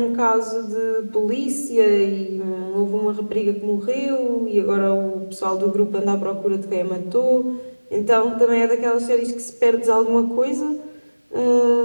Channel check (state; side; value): inverted; both; correlation -1.00